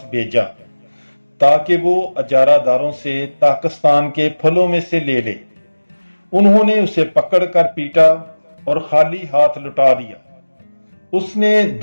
بھیجا تاکہ وہ اجارہ داروں سے طاقستان کے پھلوں میں سے لے لے۔ انہوں نے اسے پکڑ کر پیٹا اور خالی ہاتھ لوٹا دیا۔ اس نے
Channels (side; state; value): both; inverted; correlation -1.00